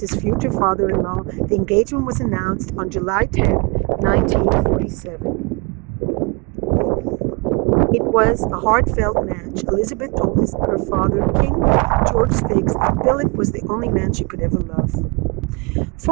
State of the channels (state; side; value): quieter; left; 30.6 dB